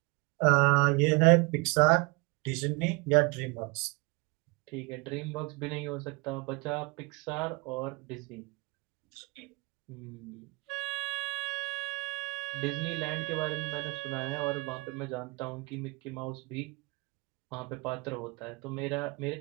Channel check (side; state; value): left; quieter; 26.3 dB